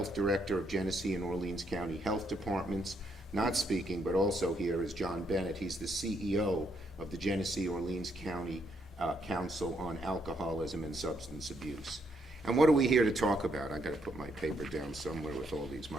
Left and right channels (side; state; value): both; normal; correlation 0.75